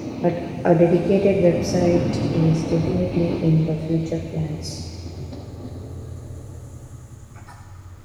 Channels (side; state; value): both; identical; correlation 1.00